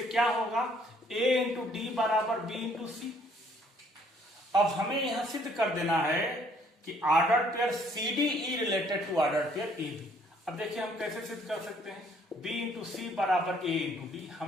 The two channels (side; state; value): both; normal; correlation 0.63